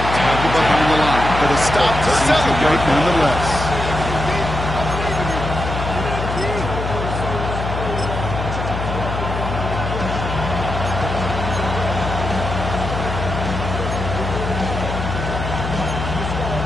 the line. But a stop to celebrate nonetheless.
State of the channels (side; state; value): left; noise; hum, 4 dB below the sound